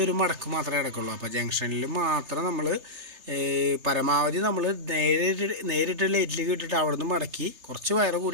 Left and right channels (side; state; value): left; late; 3.3 ms